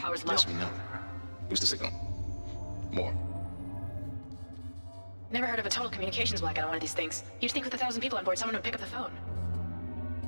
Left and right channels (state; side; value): inverted; both; correlation -1.00